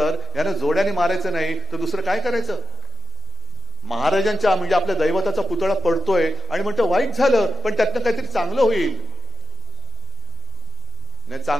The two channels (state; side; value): normal; both; correlation 0.91